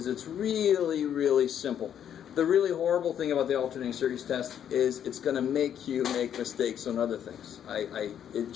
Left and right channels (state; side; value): quieter; right; 9.4 dB